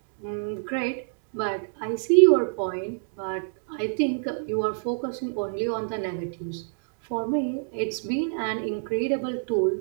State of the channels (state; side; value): silent; left; digital silence